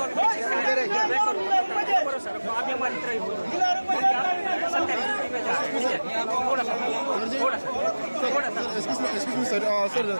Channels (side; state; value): both; inverted; correlation -1.00